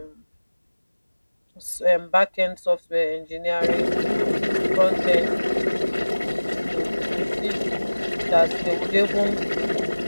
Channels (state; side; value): inverted; both; correlation -1.00